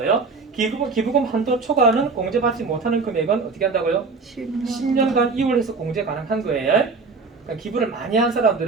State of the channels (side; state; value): left; quieter; 4.3 dB